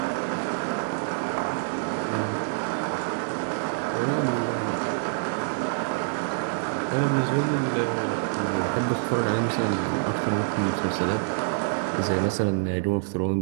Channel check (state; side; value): silent; left; digital silence